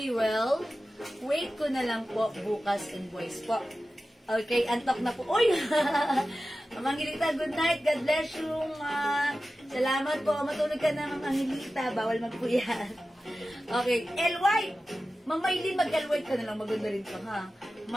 Wait ko na lang po bukas invoice po. Okay, antok na po. Uy! Ma'am Angelita, good night. God bless you, ma. Salamat po. Matulog ka na, Ma'am Angelita. Bawal magpuyat. Okay, L White. Ma'am Maylin, mag-L White ka na lang. Maganda rin to, ha?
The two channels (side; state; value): both; normal; correlation 0.94